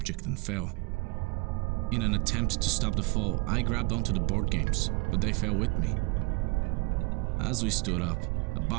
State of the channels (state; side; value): quieter; left; 26.5 dB